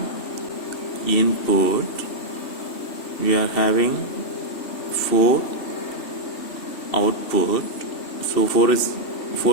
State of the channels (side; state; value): right; late; 2.7 ms